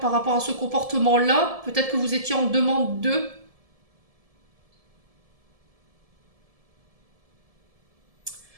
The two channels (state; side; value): late; left; 1.7 ms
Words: par rapport à ce comportement-là. Peut-être que vous étiez en demande d'eux.